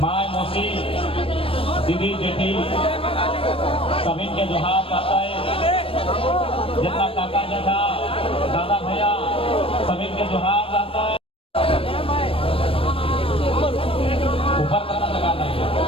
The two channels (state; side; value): late; right; 0.27 ms